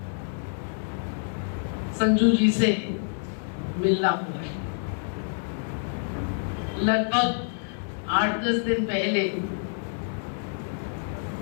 संजू जी से मिलना हुआ है। लगभग 8-10 दिन पहले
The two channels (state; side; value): silent; right; digital silence